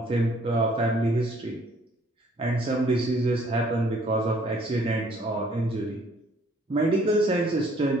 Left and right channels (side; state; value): both; normal; correlation 0.61